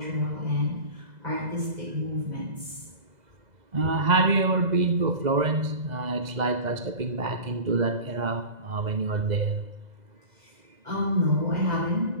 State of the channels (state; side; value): late; left; 2.0 ms